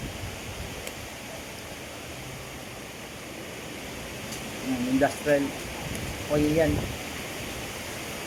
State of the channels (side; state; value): both; identical; correlation 1.00